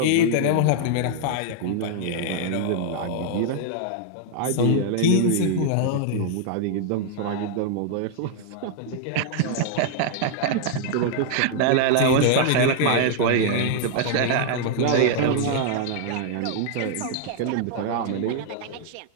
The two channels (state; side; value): different; both; correlation 0.00